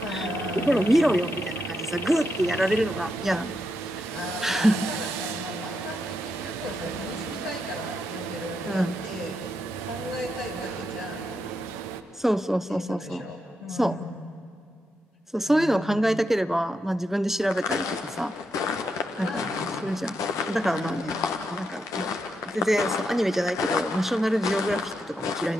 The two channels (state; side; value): normal; both; correlation 0.83